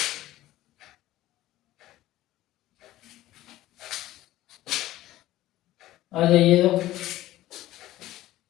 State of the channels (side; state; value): right; quieter; 15.3 dB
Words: आ जाइए, तो